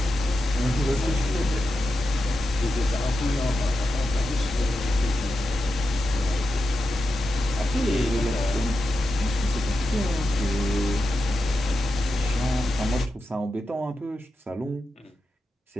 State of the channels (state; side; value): normal; both; correlation 0.89